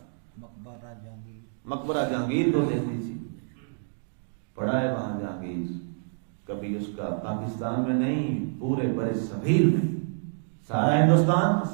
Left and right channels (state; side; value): silent; left; digital silence